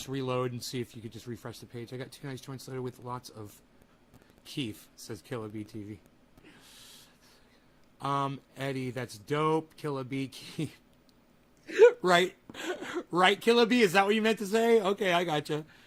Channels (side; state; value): both; identical; correlation 1.00